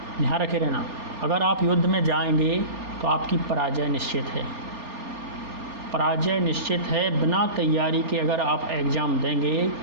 ध्यान रखे रहना, अगर आप युद्ध में जाएंगे तो आपकी पराजय निश्चित है, पराजय निश्चित है। बिना तैयारी के अगर आप एग्ज़ाम देंगे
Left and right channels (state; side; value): late; left; 3.4 ms